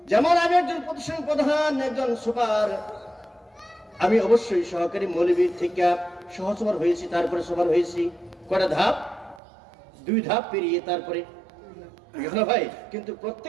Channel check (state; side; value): drops out; left; at 9.4 s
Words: যেমন আমি একজন প্রতিষ্ঠান প্রধান, একজন সুপার, আমি অবশ্যই সহকারী মৌলবীর থেকে সহসভার হয়েছি, তারপরে সবার হয়েছি। কটা ধাপ? 2 ধাপ পেরিয়ে তারপরে ভাই। কিন্তু